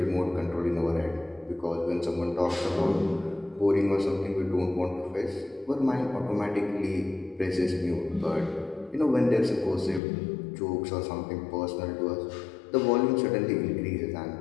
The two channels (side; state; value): right; drops out; at 10.0 s